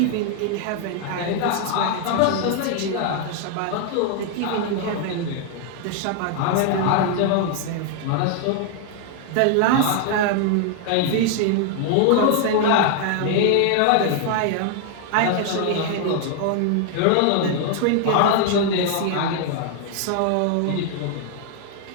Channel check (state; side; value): different; both; correlation 0.00